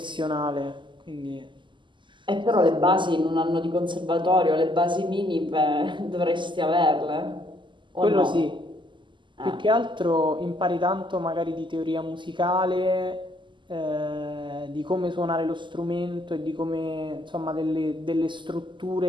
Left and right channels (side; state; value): left; late; 0.24 ms